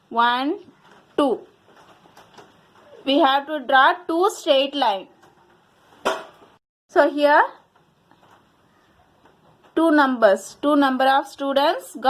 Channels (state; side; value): identical; both; correlation 1.00